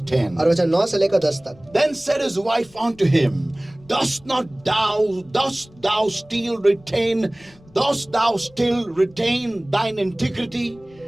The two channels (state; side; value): noise; left; rumble, 27 dB below the sound